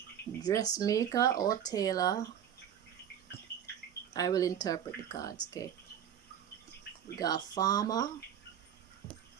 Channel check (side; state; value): left; quieter; 9.4 dB